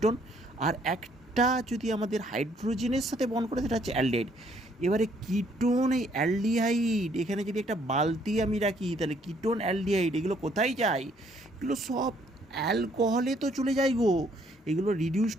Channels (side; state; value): both; normal; correlation 0.66